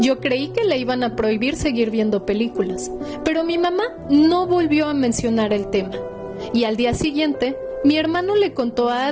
creí que le iban a prohibir seguir viendo películas, pero mi mamá no volvió a mencionar el tema. Y al día siguiente, mi hermano le contó a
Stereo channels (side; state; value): both; identical; correlation 1.00